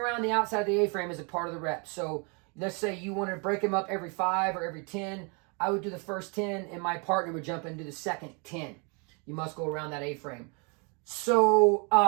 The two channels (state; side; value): quieter; left; 34.0 dB